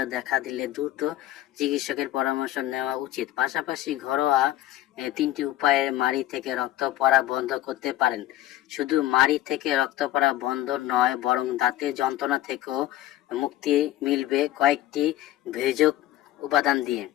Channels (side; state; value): right; quieter; 14.4 dB